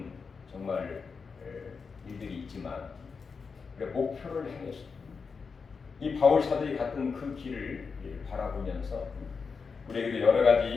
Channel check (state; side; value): quieter; right; 5.2 dB